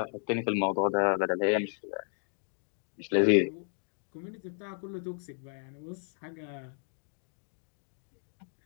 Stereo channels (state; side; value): silent; right; 56 dB below the other